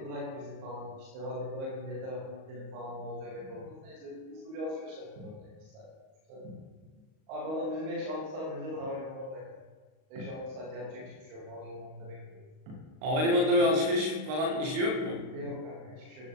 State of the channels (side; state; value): left; late; 38 ms